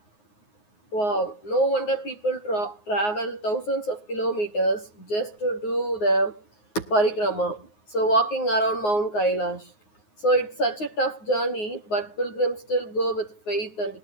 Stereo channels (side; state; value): right; late; 9.5 ms